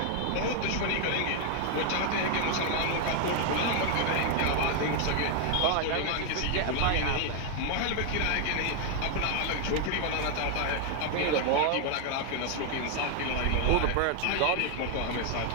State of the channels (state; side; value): different; both; correlation 0.00